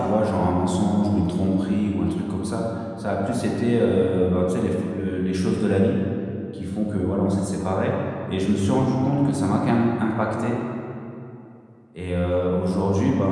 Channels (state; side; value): identical; both; correlation 1.00